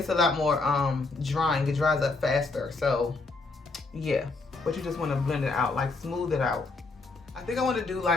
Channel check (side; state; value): right; quieter; 3.7 dB